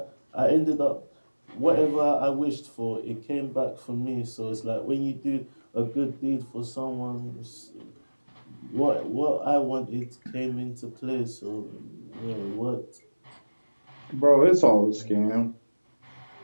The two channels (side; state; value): both; inverted; correlation -1.00